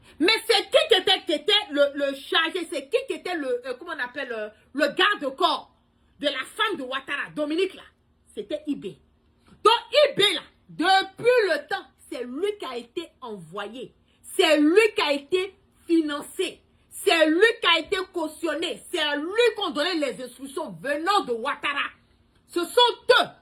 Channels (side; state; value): both; identical; correlation 1.00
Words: Mais c'est qui était le chargé, c'est qui était le, comment on appelle, le garde-corps de la femme de Ouattara, Dominique là, c'était Ibé. Donc Ibé là, depuis le temps, c'est lui qui a été envoyé, c'est lui qui a été financé, c'est lui qui a été cautionné, c'est lui qui a donné les instructions venant de Ouattara. Ce sont eux,